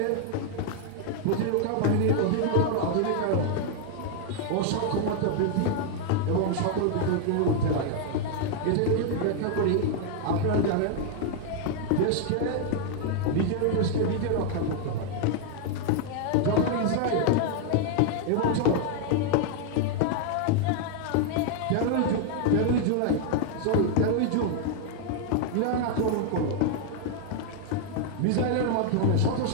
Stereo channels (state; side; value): different; both; correlation 0.00